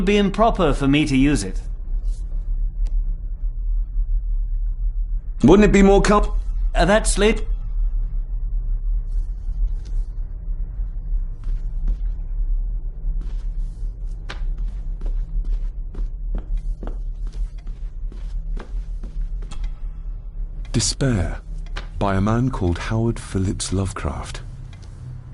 be improper for me to use it. Wouldn't it be more That's Lady... Despair, by a man called Howard Phillips Lovecraft.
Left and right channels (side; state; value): both; identical; correlation 1.00